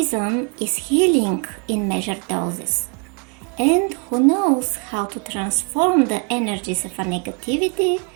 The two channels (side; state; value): left; quieter; 35.7 dB